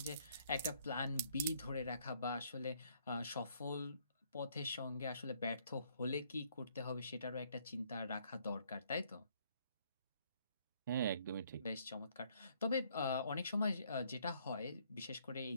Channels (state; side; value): inverted; both; correlation -0.66